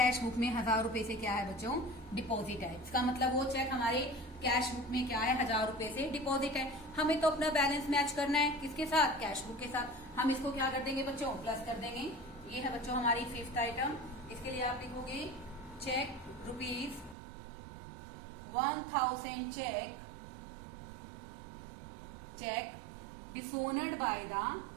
बुक में 1,000 रुपए से क्या है बच्चों डिपॉजिट है। इसका मतलब वो चेक हमारे कैश बुक में क्या है 1,000 रुपए से डिपॉजिट है। हमें तो अपना बैलेंस मैच करना है किसके साथ कैश बुक के साथ। हम इसको क्या कर देंगे बच्चों प्लस कर देंगे। ये है बच्चों हमारी फिफ्थ आइटम। इसके लिए आप लिखोगे cheque ₹1000 cheque dishonoured by the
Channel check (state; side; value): drops out; left; at 17.2 s